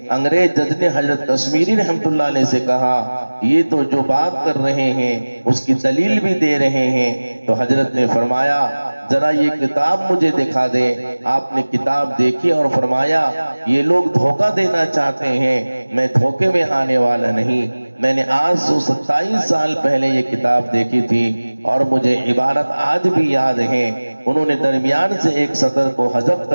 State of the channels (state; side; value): inverted; both; correlation -1.00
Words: انگریز جج نے حضرت کشمیری رحمت اللہ علیہ سے کہا یہ تو جو بات کر رہے ہیں اس کی دلیل بھی دے رہے ہیں، تو حضرت نے فرمایا ذرا یہ کتاب مجھے دکھا دے۔ آپ نے کتاب دیکھی اور فرمایا یہ لوگ دھوکہ دینا چاہتے ہیں، میں دھوکے میں آنے والا نہیں۔ میں نے آج 127 سال پہلے یہ کتاب دیکھی تھی اور مجھے عبارت آج بھی یاد ہے۔ انہوں نے درمیان سے ایک سطر کو حذف